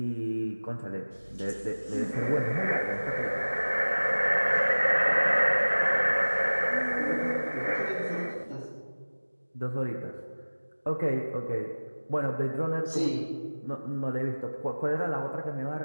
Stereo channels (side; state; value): both; inverted; correlation -1.00